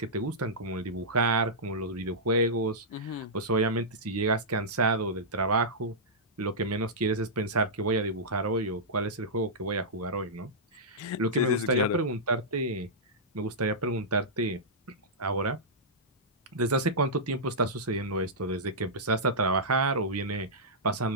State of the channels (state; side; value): normal; both; correlation -0.13